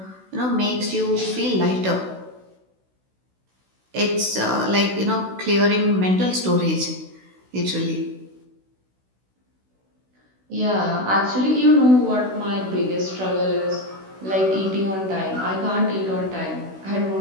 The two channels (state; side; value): late; left; 16 ms